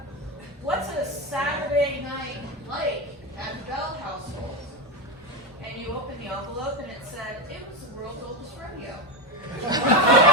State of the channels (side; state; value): both; normal; correlation 0.13